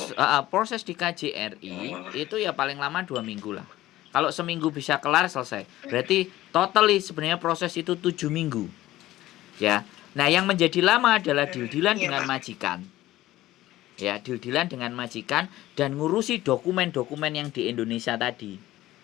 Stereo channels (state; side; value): quieter; right; 15.8 dB